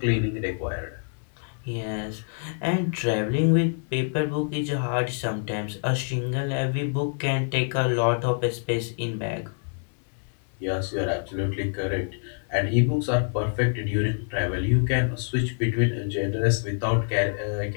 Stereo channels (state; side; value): silent; right; digital silence